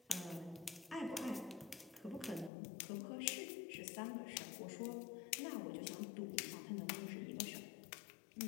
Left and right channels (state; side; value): drops out; right; at 2.5 s